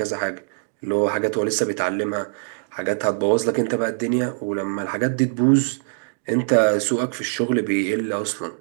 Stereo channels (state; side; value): silent; left; digital silence